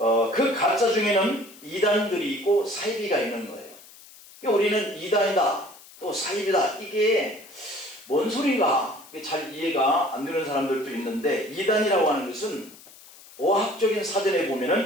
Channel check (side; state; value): left; noise; hiss, 21 dB below the sound